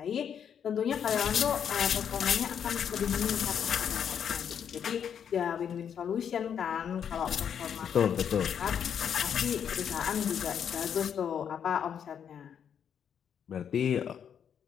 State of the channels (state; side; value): quieter; right; 8.2 dB